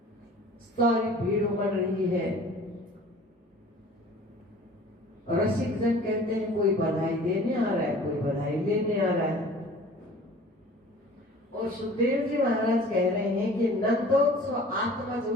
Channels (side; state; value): both; normal; correlation 0.46